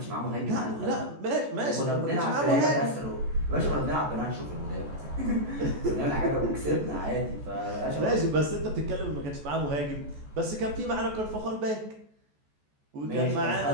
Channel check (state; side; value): late; left; 14 ms